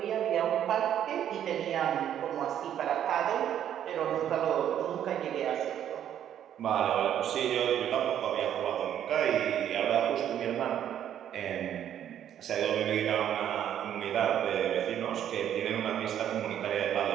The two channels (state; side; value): quieter; left; 10.3 dB